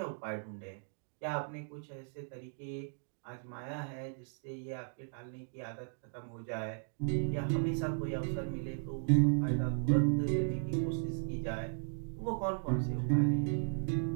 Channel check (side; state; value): left; silent; digital silence